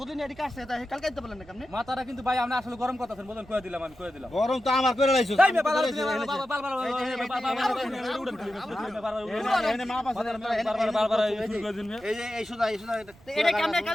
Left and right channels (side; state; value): right; noise; rumble, 25 dB below the sound